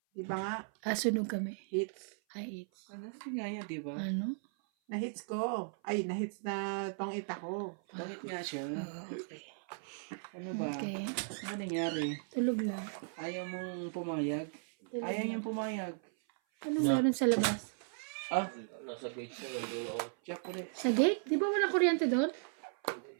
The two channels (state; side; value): silent; left; 53 dB below the other